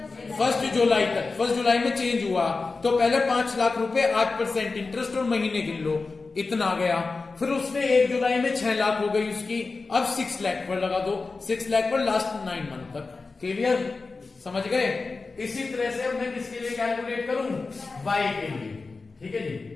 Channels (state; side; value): quieter; right; 4.0 dB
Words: 1 जुलाई तक। 1 जुलाई में चेंज हुआ तो पहले 5 लाख रुपए 8% इंटरेस्ट और महीने गिन लो, इतना आ गया। फिर उसने 1 जुलाई में 6 लाख हो गई उसकी। अब 6 लाख पर लगा दो, 6 लाख पर लास्ट 9 मंथ तक। क्लियर? समझ गए? इसी तरह से अब मैं किसके लिए कैलकुलेट करूं? वाई के लिए। ठीक है जी,